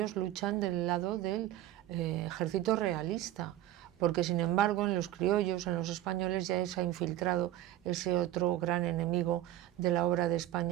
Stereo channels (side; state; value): left; quieter; 13.5 dB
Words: luchan del lado del ejército realista, porque sin embargo en los criollos, en los españoles, ya se ha infiltrado ese otro gran enemigo de la obra de